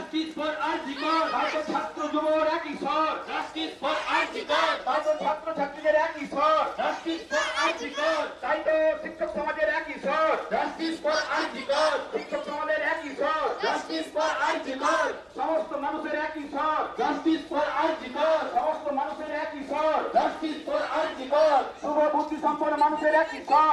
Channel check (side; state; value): both; identical; correlation 1.00